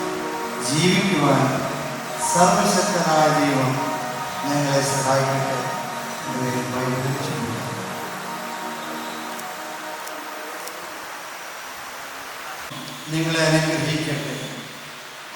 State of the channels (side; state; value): both; identical; correlation 1.00